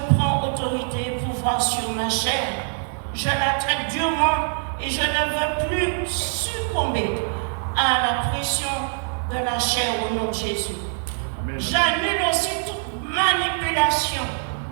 prends autorité et pouvoir sur ma chair. Je la traite durement et je ne veux plus succomber à la pression de la chair au nom de Jésus. J'annule aussi toute manipulation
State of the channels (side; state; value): left; silent; 63 dB below the other